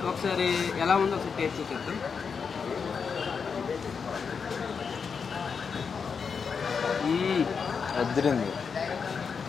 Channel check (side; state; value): right; quieter; 5.9 dB